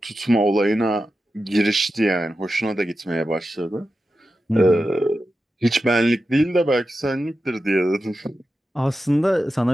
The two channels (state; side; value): normal; both; correlation 0.91